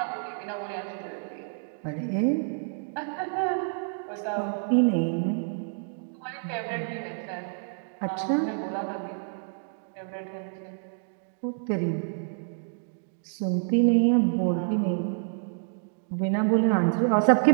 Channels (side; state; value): left; silent; digital silence